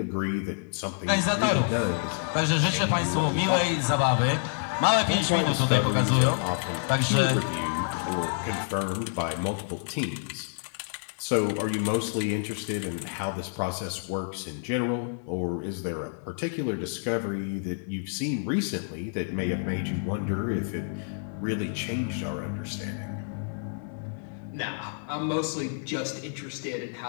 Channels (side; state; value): right; silent; digital silence